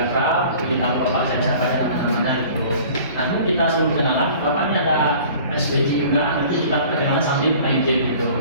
kita bapak saya siapa namanya gitu. Nanti kita sebelum kenalan, bapaknya ada SPG juga, nanti kita perkenalan sambil main game gitu.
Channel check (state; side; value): inverted; both; correlation -0.47